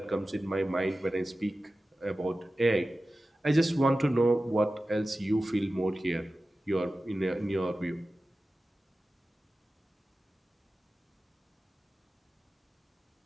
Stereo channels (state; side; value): normal; both; correlation 0.95